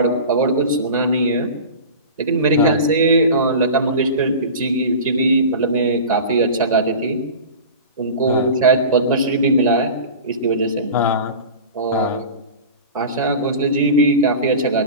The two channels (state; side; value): inverted; both; correlation -0.33